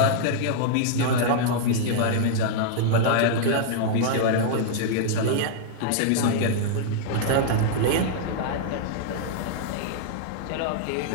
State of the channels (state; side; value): different; both; correlation -0.01